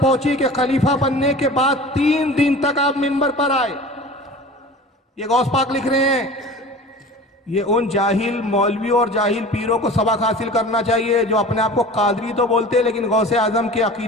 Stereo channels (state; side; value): normal; both; correlation 0.39